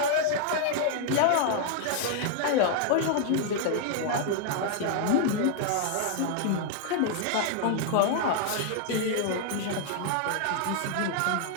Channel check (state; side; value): different; both; correlation 0.00